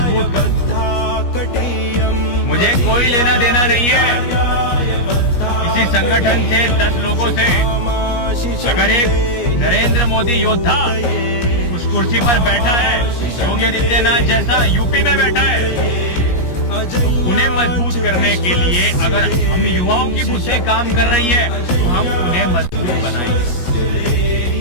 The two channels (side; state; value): right; late; 17 ms